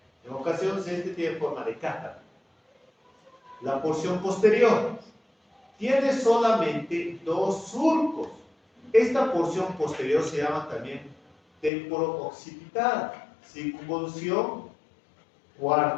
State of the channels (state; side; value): drops out; right; at 11.7 s